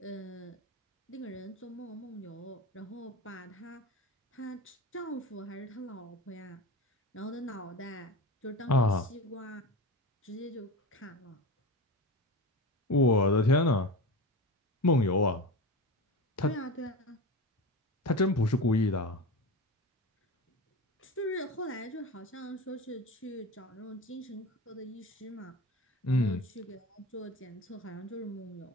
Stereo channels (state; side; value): normal; both; correlation 0.28